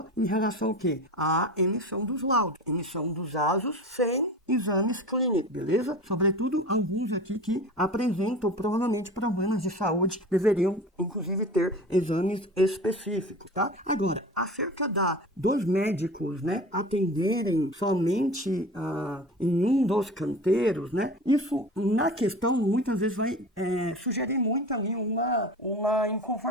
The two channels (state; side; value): normal; both; correlation 0.35